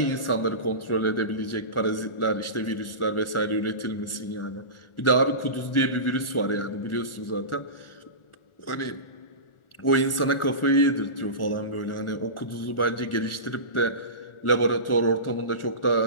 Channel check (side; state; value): right; late; 1.4 ms